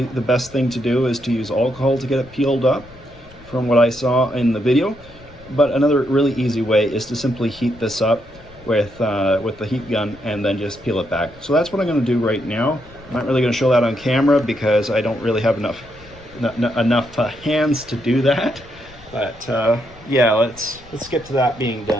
best thing to do is to use alcohol to get it peeled up, from what I saw in the video. But another really easy way is to simply heat this up with the heat gun and then just peel it back. So that's what I'm going to do right now. I'm not really going to show that on camera because I don't really have enough hands to do that. But yeah, let's get to that being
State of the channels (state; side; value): noise; left; rumble, 22 dB below the sound